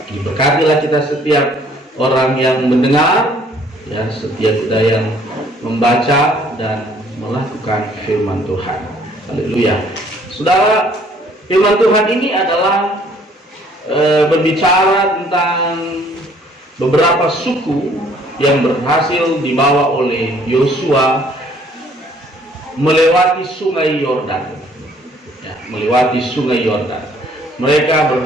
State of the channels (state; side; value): normal; both; correlation 0.60